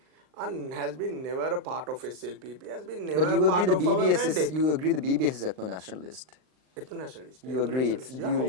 and has been never a part of SLPP, has been never a part of our mandate. You agree the BBS is ethno-nationalist? Ethno-nationalist. You agree? Yeah,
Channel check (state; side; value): late; left; 39 ms